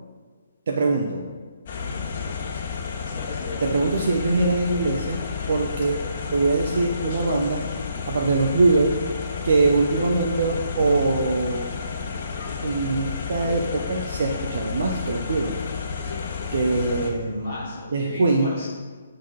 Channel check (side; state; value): both; inverted; correlation -0.74